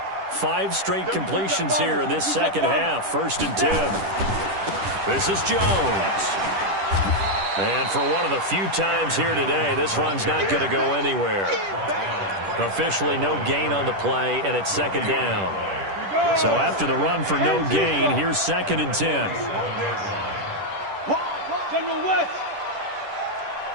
5 straight completions here in this 2nd half. 1st and 10. This is Jones. And for one of the few times here today, this run's not going to go anywhere. Officially no gain on the play, and it's 2nd down. So after the run for no gain, here's 2nd and 10. General West.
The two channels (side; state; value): left; late; 10 ms